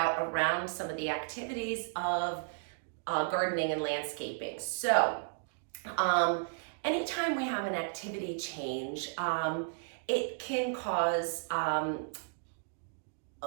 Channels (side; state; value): left; silent; digital silence